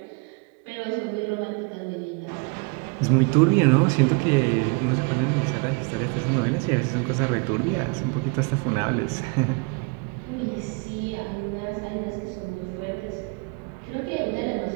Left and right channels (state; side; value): quieter; left; 32.3 dB